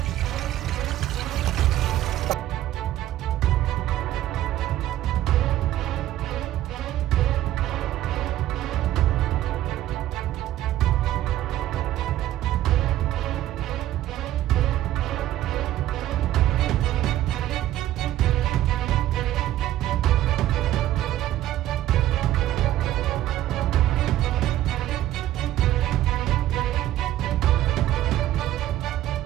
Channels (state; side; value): quieter; left; 13.7 dB